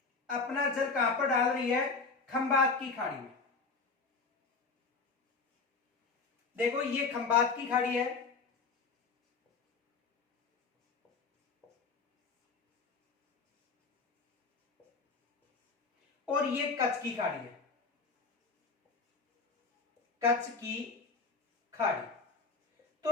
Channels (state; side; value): quieter; right; 4.5 dB